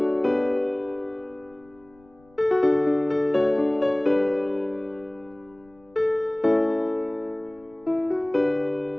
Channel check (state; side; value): noise; left; rumble, 30 dB below the sound